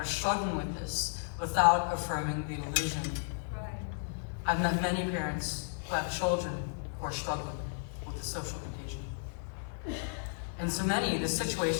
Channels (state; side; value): silent; right; digital silence